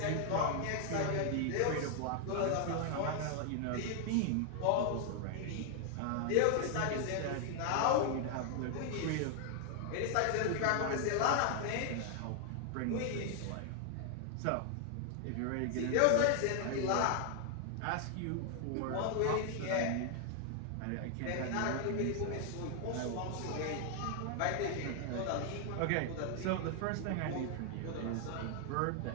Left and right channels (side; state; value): both; different; correlation 0.00